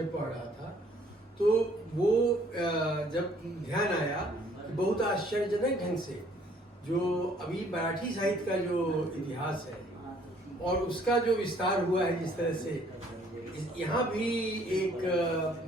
पढ़ रहा था, तो वो जब ध्यान आया कि बहुत आश्चर्यजनक ढंग से जो अभी मराठी साहित्य का जो इतिहास है और उसका जो विस्तार हुआ है, जिस तरह से यहाँ भी एक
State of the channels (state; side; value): normal; both; correlation 0.61